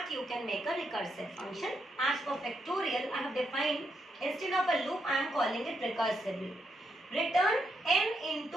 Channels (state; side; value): normal; both; correlation 0.80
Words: you can make a recursive function. As for factorial, I have defined, instead of a loop, I am calling it recursively. Return n